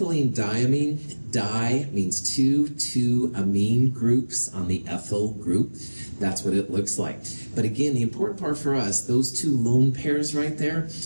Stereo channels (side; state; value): both; inverted; correlation -1.00